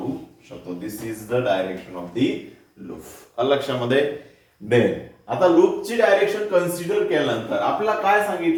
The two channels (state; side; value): identical; both; correlation 1.00